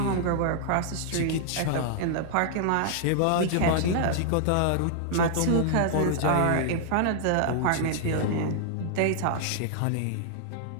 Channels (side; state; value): both; different; correlation -0.01